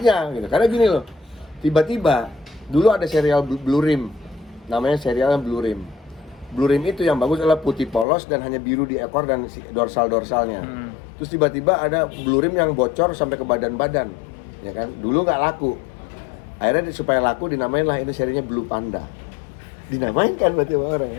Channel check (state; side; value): drops out; right; at 8.1 s